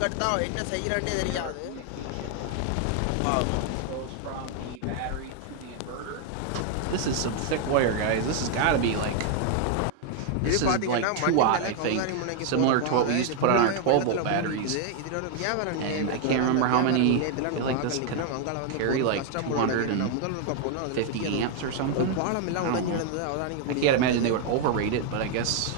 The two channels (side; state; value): both; different; correlation 0.00